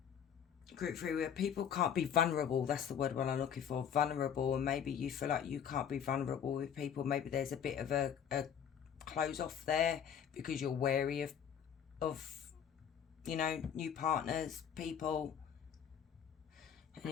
Group 3, where people can't be vulnerable. That's the word what I'm looking for, vulnerable. And maybe you feel like you can't be vulnerable with people. Maybe there's a bit of a close off there because you're wary of you know, new partners, people.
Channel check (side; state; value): right; quieter; 8.3 dB